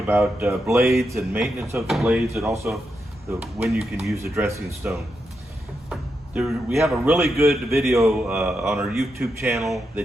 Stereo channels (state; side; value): normal; both; correlation 0.85